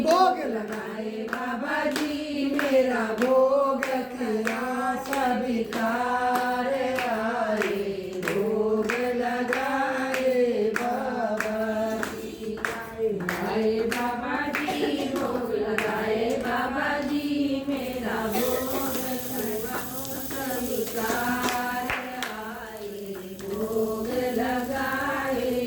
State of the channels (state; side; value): identical; both; correlation 1.00